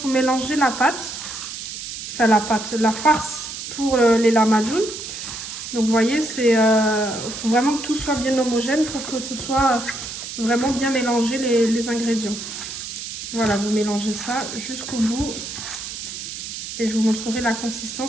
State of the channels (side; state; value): right; noise; hiss, 8 dB below the sound